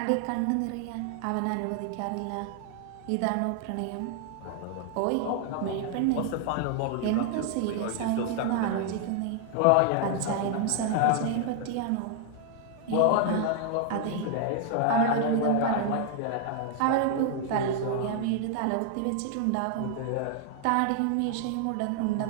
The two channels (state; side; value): different; both; correlation 0.00